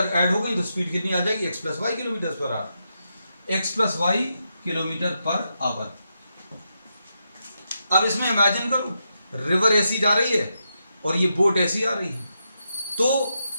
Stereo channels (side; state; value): both; inverted; correlation -0.84